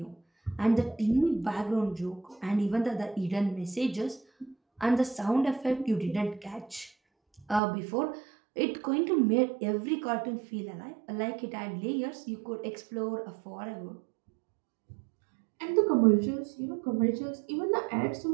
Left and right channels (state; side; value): drops out; left; at 7.6 s